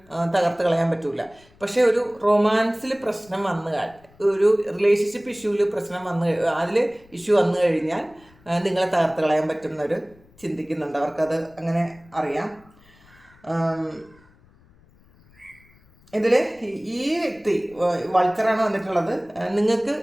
തകർത്ത് കളയാൻ പറ്റില്ല. പക്ഷേ ഒരു റൊമാൻസിൽ പ്രശ്നം ഒരു റിലേഷൻഷിപ്പ് ഇഷ്യൂവിൽ അതിൽ ഇഷ്യൂ വന്നു കഴിഞ്ഞാൽ നിങ്ങളെ തകർത്ത് കളയാൻ പറ്റുന്നവർ ചിന്തിക്കുന്നുണ്ട്. അവർക്കത് അങ്ങനെ അറിയാം. ഇതിൽ ഈ വ്യക്തി വൾച്ചറാണ് വന്നിട്ടുള്ളത്. നിങ്ങൾക്ക്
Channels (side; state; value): left; noise; rumble, 28 dB below the sound